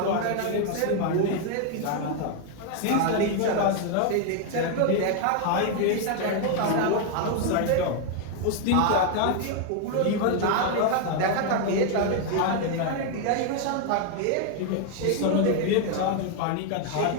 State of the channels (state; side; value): different; both; correlation 0.01